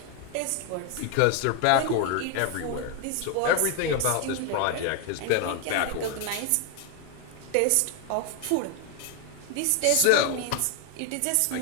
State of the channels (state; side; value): different; both; correlation 0.01